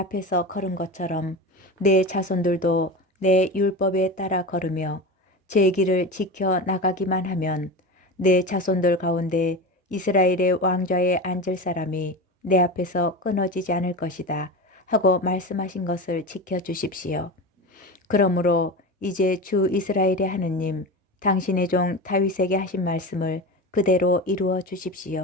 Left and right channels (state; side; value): normal; both; correlation 0.26